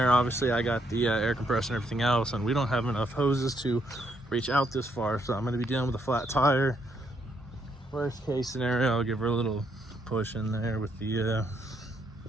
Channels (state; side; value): normal; both; correlation 0.74